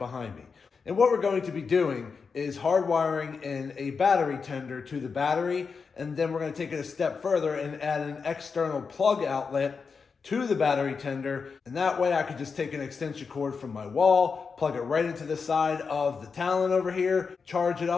me. And what we're going to be doing is hardwiring in a battery tender to the battery, and then we're gonna take it a step further and add an external plug outlet to the battery tender, and that way I could just take an extension cord from my wall, plug it right into the side of the Talon over here, charge it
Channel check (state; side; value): quieter; right; 5.3 dB